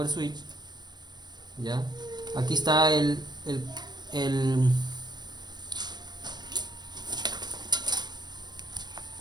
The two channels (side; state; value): left; late; 0.21 ms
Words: Ya. Aquí está el